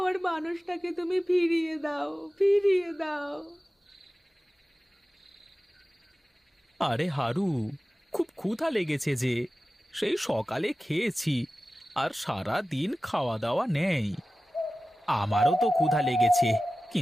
মানুষটাকে তুমি ফিরিয়ে দাও, ফিরিয়ে দাও। আরে হারু, খুব ক্ষুধা লেগেছে যে, সেই সকালে খেয়েছি আর সারা দিন খাওয়া দাওয়া নেই। আমারও তো ক্ষুধা লেগেছে,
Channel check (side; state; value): both; normal; correlation 0.95